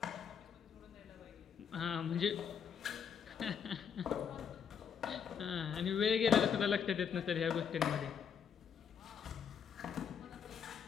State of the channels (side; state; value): right; quieter; 7.4 dB